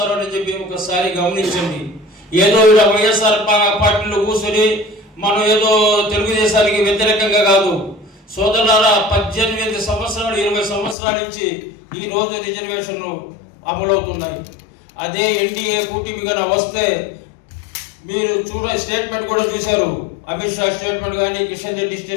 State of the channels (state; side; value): drops out; right; at 11.0 s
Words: అని చెప్పి ఒకసారి గమనించండి. ఏదో ఇలా వైఎస్ఆర్ పార్టీలో కూర్చొని మనం ఏదో తెలుగుదేశానికి వ్యతిరేకంగా కాదు సోదరులారా. 18 సంవత్సరాలు 20 సంవత్సరాల నుంచి ఈ రోజు రిజర్వేషన్లు అమలవుతున్నాయి. అదే ఎన్డీఏ కూటమిగా వస్తే మీరు స్టేట్మెంట్ కూడా చూశారు. అమిత్ షా స్టేట్మెంట్ కానీ, కిషన్ రెడ్డి